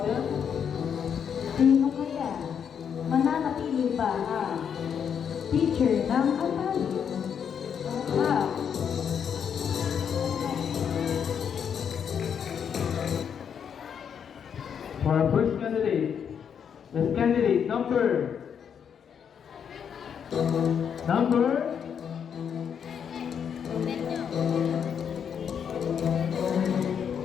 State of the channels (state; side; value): quieter; right; 7.7 dB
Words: Sino kaya? Mananatili ba ang teacher ng Atali? For our first candidate is candidate number